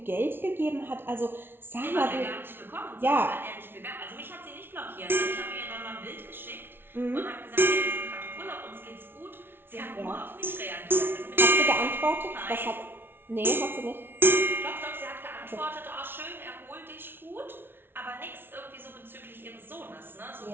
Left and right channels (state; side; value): late; left; 0.11 ms